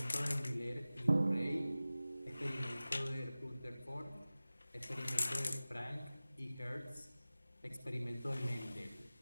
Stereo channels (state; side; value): inverted; both; correlation -0.97